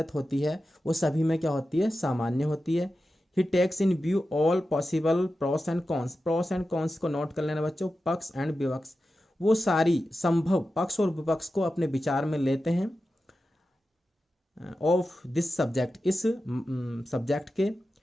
होती है वो सभी में क्या होती है, सामान्य होती है। He takes in view all possible pros and cons, pros and cons को नोट कर लेना बच्चों, पक्ष एंड विपक्ष, वो सारी संभव पक्ष और विपक्ष को अपने विचार में लेते हैं। ऑफ दिस सब्जेक्ट, इस सब्जेक्ट के।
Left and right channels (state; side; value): normal; both; correlation 0.92